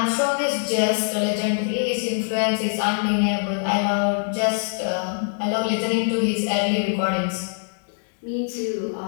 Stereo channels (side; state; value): right; silent; digital silence